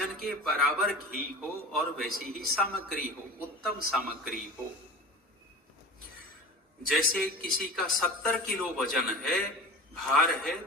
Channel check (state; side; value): normal; both; correlation 0.33